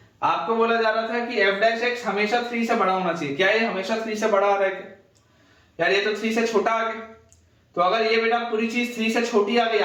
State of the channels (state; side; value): identical; both; correlation 1.00